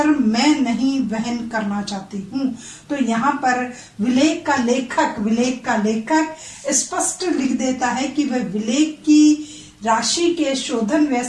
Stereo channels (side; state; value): both; identical; correlation 1.00